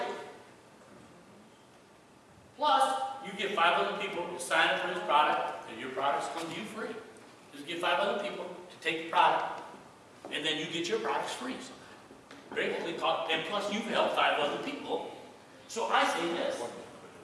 Plus, you get 500 people to sign up for this product, and your products come to you free. Just get 500 people to take the product. And and then you get your products free. Gratefully taught, and plus you've helped 5 other people. So I say this,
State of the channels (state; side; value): identical; both; correlation 1.00